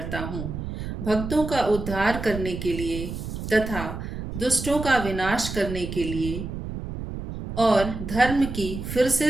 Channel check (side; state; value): right; noise; rumble, 7 dB below the sound